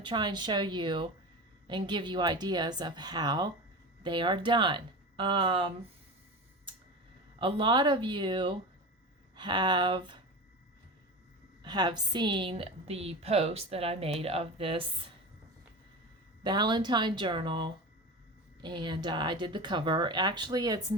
try and show you and give you ideas of how they are done. A lot of you have seen the post that I made of this Valentine journal, and I did the cover. Actually, it's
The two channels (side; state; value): both; normal; correlation 0.28